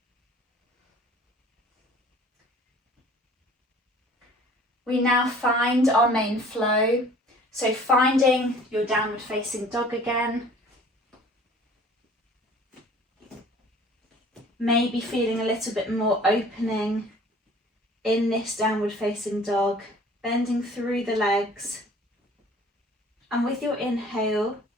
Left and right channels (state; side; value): normal; both; correlation 0.50